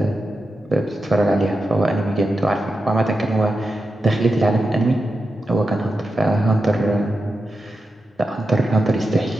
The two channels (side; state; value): both; normal; correlation 0.89